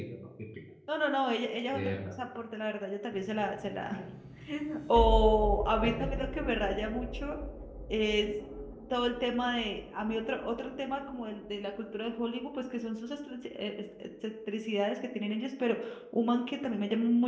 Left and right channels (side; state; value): both; identical; correlation 1.00